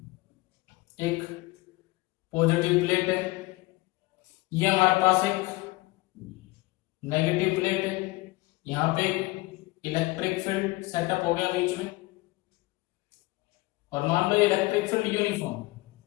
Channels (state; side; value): quieter; right; 21.8 dB